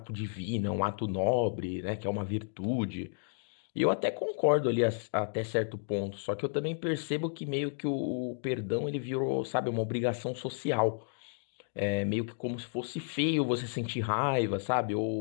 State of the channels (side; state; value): right; silent; digital silence